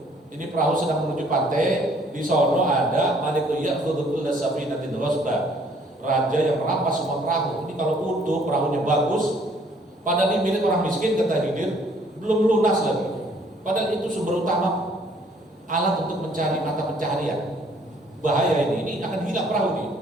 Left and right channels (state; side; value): normal; both; correlation 0.61